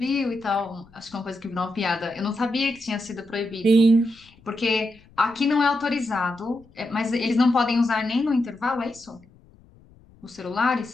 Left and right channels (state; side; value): noise; left; rumble, 27 dB below the sound